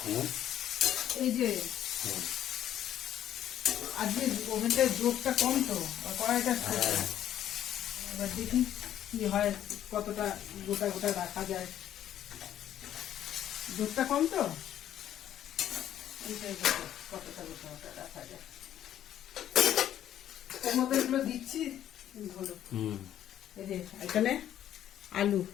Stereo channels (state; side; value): quieter; right; 11.2 dB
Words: এই যে আজকে ওভেনটার জোরটা কম তো, কড়াইটা ছোট। এবার দেখি কি হয়, কতটা গোটা গোটা রাখা যায়। দুধটা কম তো, এইটাই কতটা গোটা গোটা রাখা যায়। ওর মধ্যে এগুলো দিচ্ছি হলো। এই যে এখানে আলু,